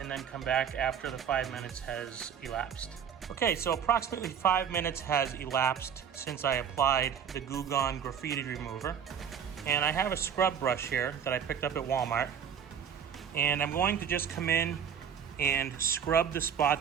then come back after the 5 minutes has elapsed. Okay, so approximately 5 minutes has elapsed since I applied the Goo Gone Graffiti remover. And I have a scrub brush here that I picked up at Walmart. And I'm going to just come in and scrub the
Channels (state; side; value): quieter; left; 8.0 dB